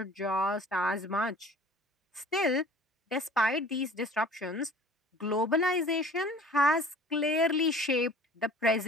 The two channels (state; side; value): normal; both; correlation 0.47